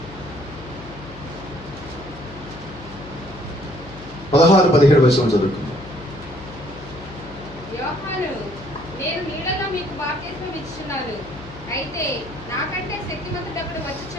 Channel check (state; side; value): noise; left; hum, 16 dB below the sound